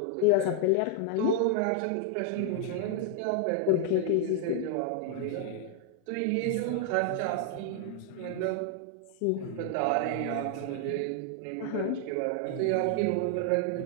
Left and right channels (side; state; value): both; different; correlation 0.00